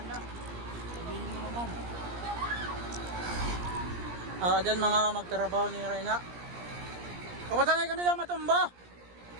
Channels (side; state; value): left; late; 17 ms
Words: na. Sabihin mo naman. Dyan mga magtrabaho ni Reyna. Kapatanay ka nila matumba.